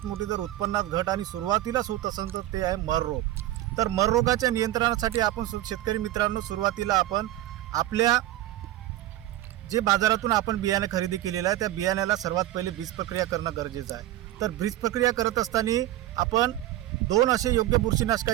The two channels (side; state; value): left; quieter; 14.5 dB